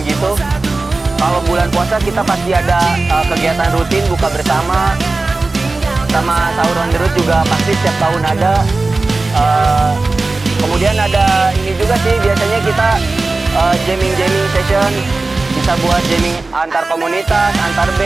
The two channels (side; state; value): left; quieter; 3.4 dB